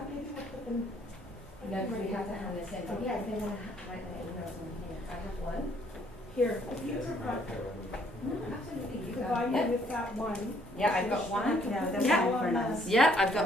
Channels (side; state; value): both; normal; correlation 0.65